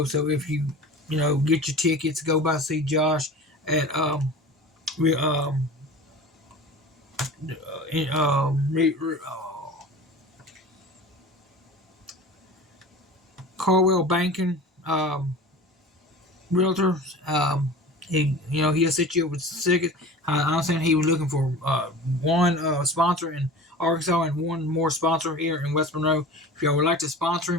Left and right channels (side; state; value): both; normal; correlation 0.37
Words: So if you get your tickets, go by see Josh at Carwell Banking Realtors. He'll set you up with tickets. I understand he was looking for one sponsor in Arkansas and one more sponsor here in West Monroe. If y'all would like to